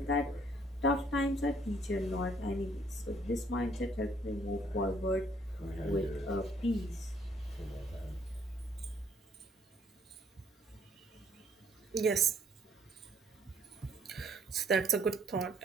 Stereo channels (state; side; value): normal; both; correlation 0.63